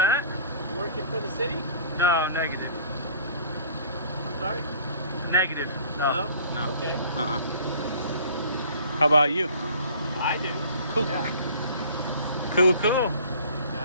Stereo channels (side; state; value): both; inverted; correlation -0.49